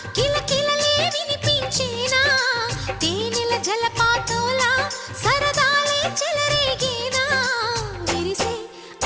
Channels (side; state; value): both; identical; correlation 1.00